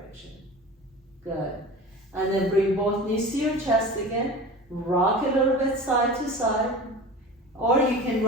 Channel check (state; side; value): normal; both; correlation 0.35